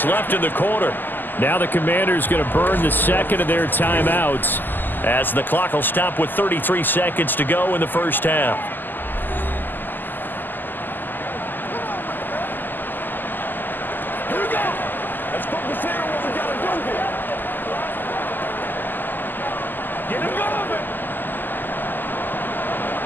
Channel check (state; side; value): late; right; 0.089 ms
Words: left in the quarter. Now the Commanders going to burn the second of their timeouts, as the clock will stop with 33 seconds to go in the first half. Here we go. Let's focus in on what we got to do here. Get him going.